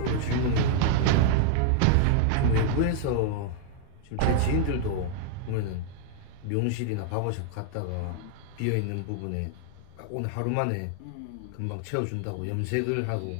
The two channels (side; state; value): both; different; correlation 0.00